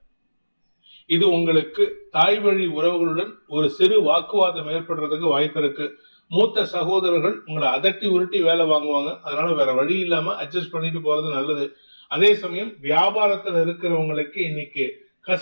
இது உங்களுக்கு தாய் வழி உறவுகளுடன் ஒரு சிறு வாக்குவாதம் ஏற்படுறதுக்கு வாய்ப்பு இருக்கு. மூத்த சகோதரர்கள் உங்களை அதட்டி உருட்டி வேலை வாங்குவாங்க. அதனால வேற வழி இல்லாம அட்ஜஸ்ட் பண்ணிட்டு போறது நல்லது. அதே சமயம் வியாபாரத்துல இருக்கிறவங்களுக்கு இன்னைக்கு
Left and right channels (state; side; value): inverted; both; correlation -1.00